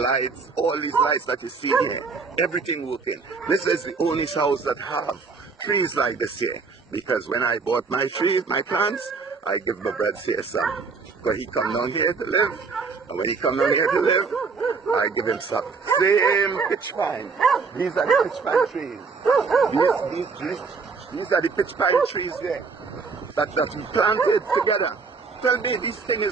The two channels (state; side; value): quieter; left; 4.8 dB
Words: All these lights that you see here, everything working. This is the only house that have trees like this here. Because when I bought my trees, my plants, I give my bread here some. Because he come down here to live. And when he come down here to live, I give him some. Same pitch pine. These are the pitch pine trees. These are the pitch pine trees there. That we planted together. Tell me, this thing